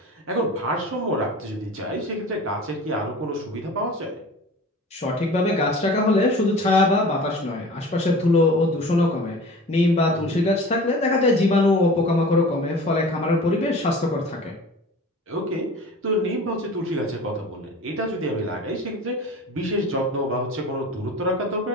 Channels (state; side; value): normal; both; correlation 0.39